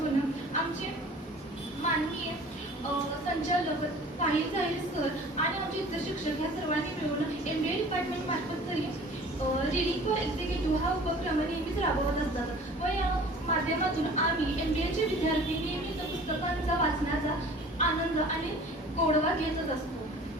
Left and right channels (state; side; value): normal; both; correlation 0.46